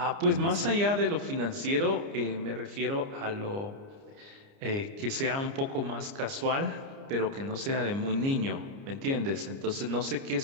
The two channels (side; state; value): left; late; 29 ms